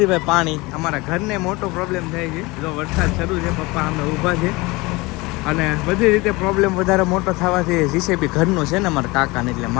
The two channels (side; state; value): right; quieter; 23.3 dB